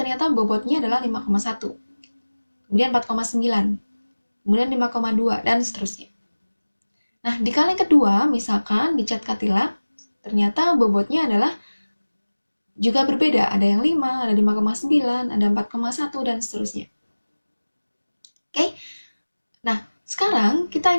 bobotnya adalah 5,1, kemudian 4,9, kemudian 5,2, dan seterusnya. Nah, di kaleng kedua, misalkan di cat Cadillac, ternyata bobotnya adalah juga berbeda. Ada yang 5, ada 5,9, ada 4,1, dan seterusnya. Oke? Nah, sekarang kita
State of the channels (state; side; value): inverted; both; correlation -1.00